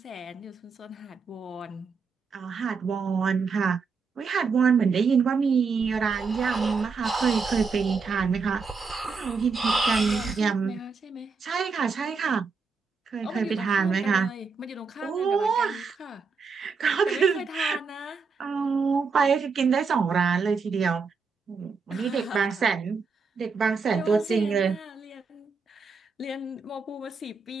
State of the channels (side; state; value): left; quieter; 5.0 dB